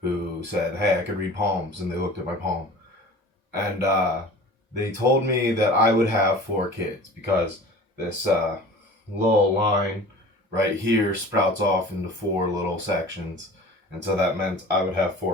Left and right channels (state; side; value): normal; both; correlation 0.41